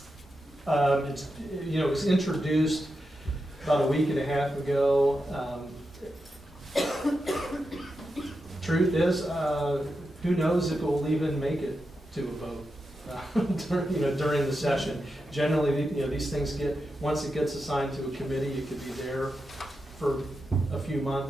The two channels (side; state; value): both; normal; correlation 0.88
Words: It was introduced about a week and a half ago. Truth is, who knows if it will even make it to a vote during the session. Generally, these things once it gets assigned to a committee, it could be there for a few